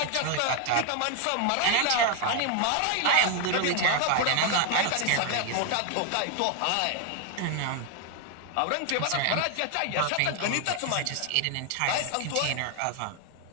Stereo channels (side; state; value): both; different; correlation 0.01